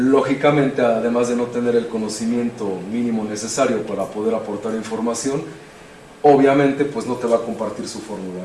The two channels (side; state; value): both; identical; correlation 1.00